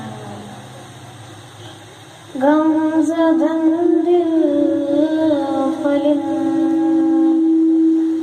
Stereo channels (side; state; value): both; identical; correlation 1.00